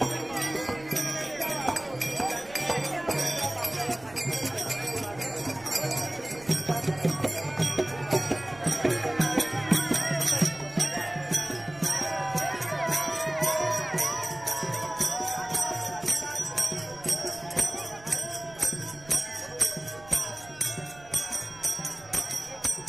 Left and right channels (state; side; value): noise; right; rumble, 22 dB below the sound